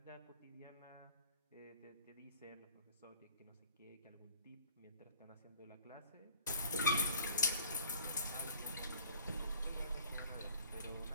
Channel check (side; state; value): both; inverted; correlation -0.49